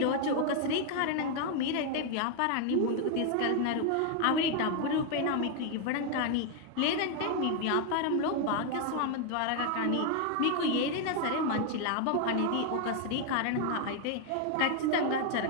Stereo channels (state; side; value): different; both; correlation 0.00